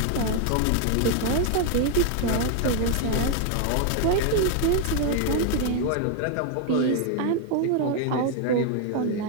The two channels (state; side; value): different; both; correlation 0.00